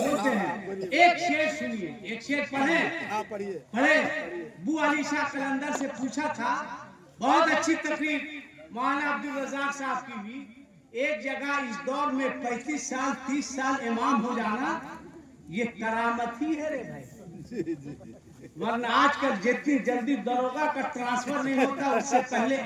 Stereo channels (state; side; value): identical; both; correlation 1.00